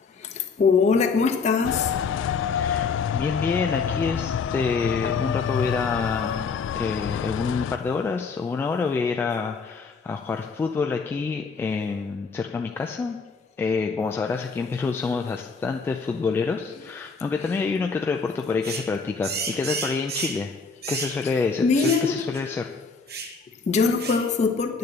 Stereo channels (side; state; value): right; quieter; 4.8 dB